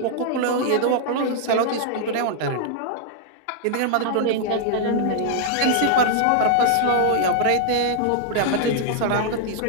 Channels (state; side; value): different; both; correlation -0.01